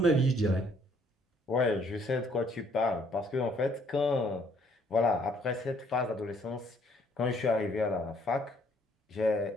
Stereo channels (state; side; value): normal; both; correlation 0.64